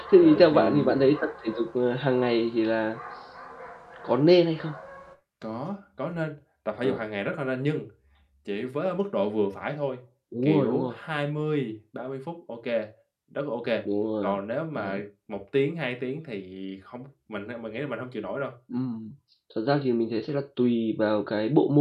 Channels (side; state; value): both; identical; correlation 1.00